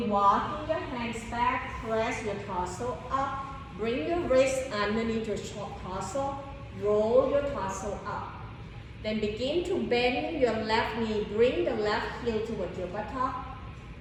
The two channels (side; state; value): both; identical; correlation 1.00